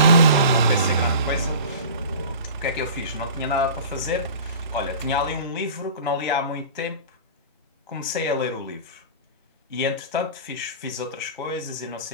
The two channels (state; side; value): inverted; both; correlation -0.38